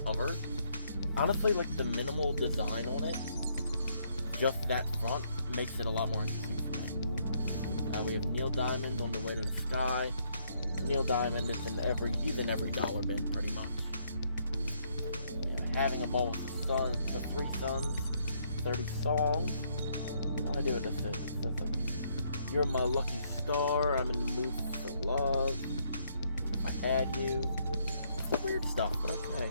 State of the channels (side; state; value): both; inverted; correlation -0.71